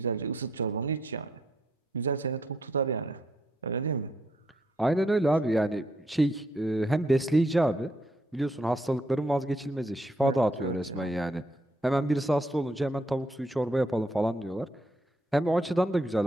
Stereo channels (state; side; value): normal; both; correlation 0.74